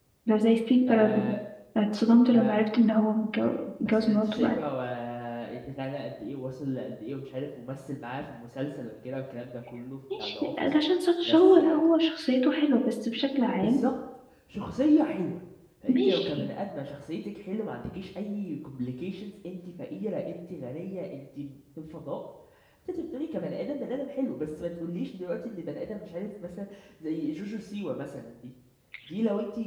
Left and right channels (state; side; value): identical; both; correlation 1.00